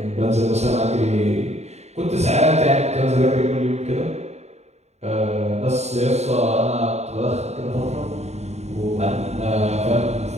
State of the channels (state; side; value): late; left; 0.32 ms